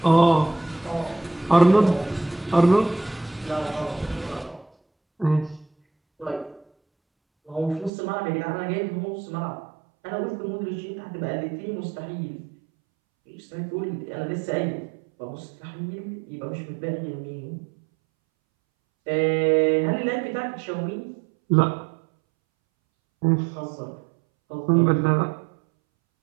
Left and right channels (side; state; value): left; drops out; at 7.9 s